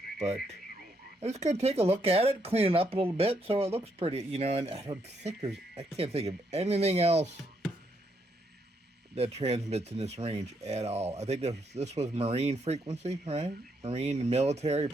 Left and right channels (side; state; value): both; normal; correlation 0.75